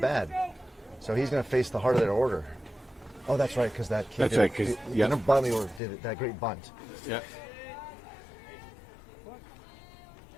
So he's going to face the heart of their order. Oh, that's right, because that kid That's did right, the number bottom of the order did that great bunt. Yeah.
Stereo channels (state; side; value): drops out; right; at 5.8 s